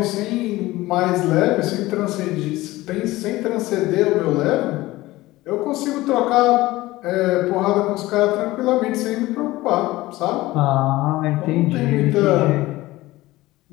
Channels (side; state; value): right; quieter; 18.3 dB